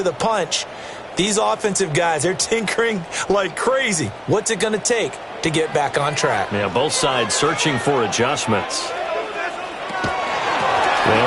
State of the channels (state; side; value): identical; both; correlation 1.00